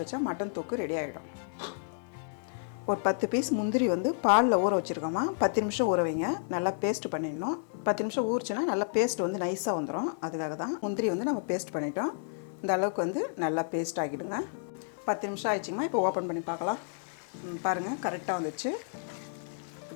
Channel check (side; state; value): right; silent; 57 dB below the other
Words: வச்சா மட்டன் தொக்கு ரெடி ஆகிடும். ஒரு 10 பீஸ் முந்திரி வந்து பாலில் ஊற வச்சுருக்கோம்மா. 10 நிமிஷம் ஊற வைங்க. நல்லா பேஸ்ட் பண்ணிடணும். 10 நிமிஷம் ஊறிச்சுன்னா நல்லா பேஸ்ட் வந்து நைஸாக வந்துடும். அதுக்காக தான் முந்திரி வந்து நம்ம பேஸ்ட் பண்ணிட்டோம். இந்த அளவுக்கு வந்து நல்லா பேஸ்ட் ஆகிடுங்க. 10 நிமிஷம் ஆயிடுச்சுங்கம்மா. இப்போ ஓப்பன் பண்ணி பார்க்கலாம். பாருங்கள், கரெக்டாக வந்துச்சு.